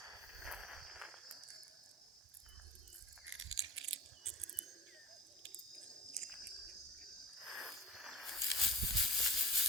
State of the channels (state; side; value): normal; both; correlation 0.37